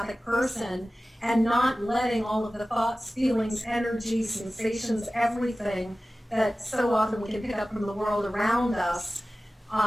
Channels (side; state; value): both; normal; correlation 0.96